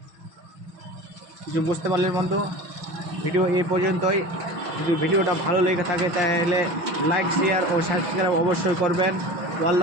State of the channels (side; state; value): left; late; 6.0 ms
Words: কিছু বুঝতে পারলেন বন্ধু? ভিডিও এই পর্যন্তই। যদি ভিডিওটা ভালো লেগে থাকে তাহলে লাইক, শেয়ার ও সাবস্ক্রাইব অবশ্যই করবেন। All